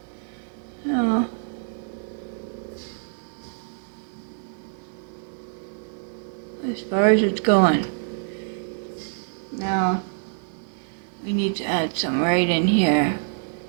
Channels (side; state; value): left; silent; digital silence